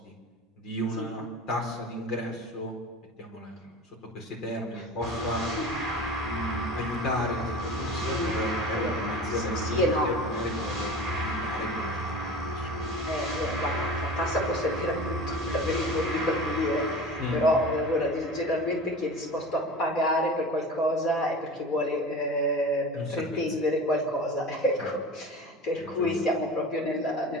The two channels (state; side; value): normal; both; correlation 0.35